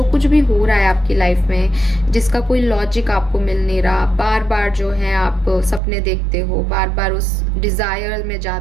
कुछ भी हो रहा है आपकी लाइफ में, जिसका कोई लॉजिक आपको मिल नहीं रहा, बार बार जो है आप सपने देखते हो, बार बार उस डिजायर में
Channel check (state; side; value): drops out; left; at 5.8 s